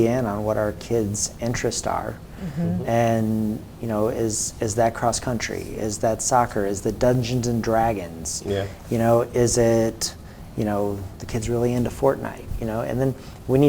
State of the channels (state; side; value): identical; both; correlation 1.00